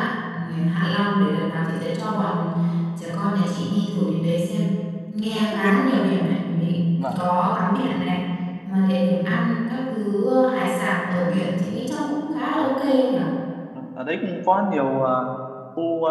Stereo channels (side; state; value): both; identical; correlation 1.00